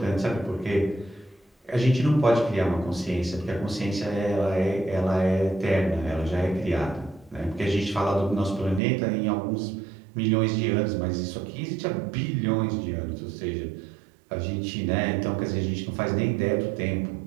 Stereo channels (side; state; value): left; drops out; at 8.8 s